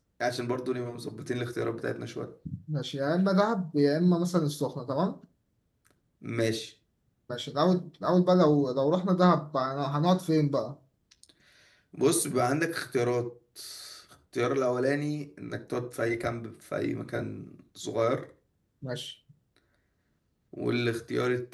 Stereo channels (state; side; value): identical; both; correlation 1.00